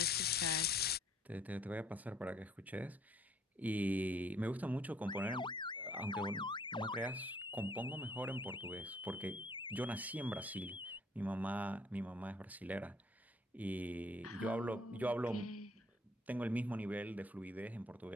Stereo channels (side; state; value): both; normal; correlation 0.61